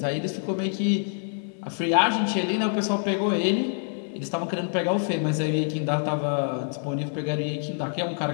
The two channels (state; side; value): silent; right; digital silence